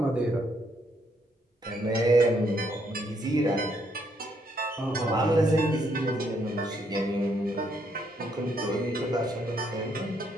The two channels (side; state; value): both; normal; correlation 0.73